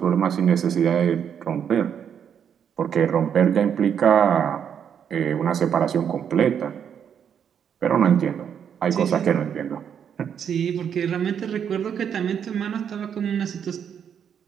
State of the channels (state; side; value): quieter; left; 8.2 dB